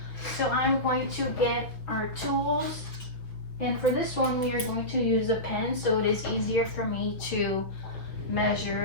So I'm going to get our tools, and for this one we are going to use a pen so it is easier for me to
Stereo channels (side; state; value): right; late; 6.3 ms